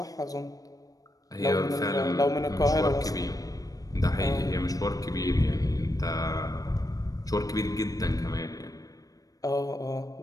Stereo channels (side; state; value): right; late; 0.18 ms